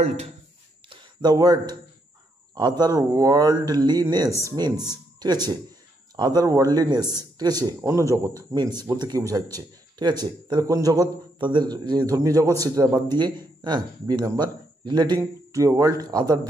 word other worldliness means, ঠিক আছে, আদার ওয়ার্ল্ডলিনেস, ঠিক আছে, অন্য জগৎ, মিনস বলতে কী বোঝাচ্ছে, ঠিক আছে, তাহলে কোন জগৎ, তাদের যে ধর্মীয় জগৎ সেটা বাদ দিয়ে, B number relating to a world other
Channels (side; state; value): both; normal; correlation 0.77